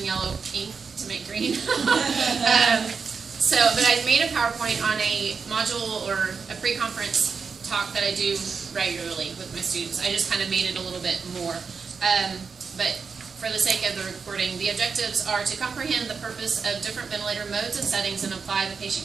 yellow ink to make green. But I made a PowerPoint on a module or a pre-conference talk that I do regularly with my students. I just kind of made it a little bit more. But for the sake of the recording, the objectives are to comprehend the purpose of different ventilator modes and settings and apply the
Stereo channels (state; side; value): quieter; left; 5.4 dB